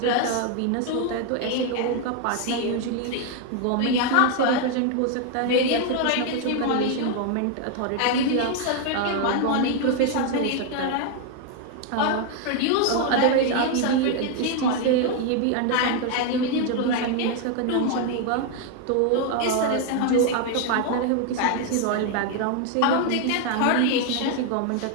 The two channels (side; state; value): both; different; correlation 0.01